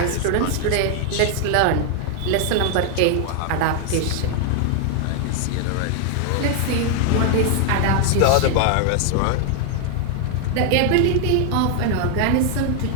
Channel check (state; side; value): different; both; correlation 0.00